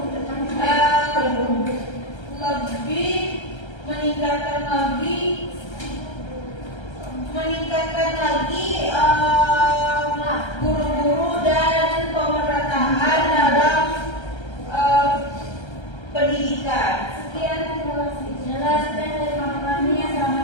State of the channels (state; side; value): late; right; 1.3 ms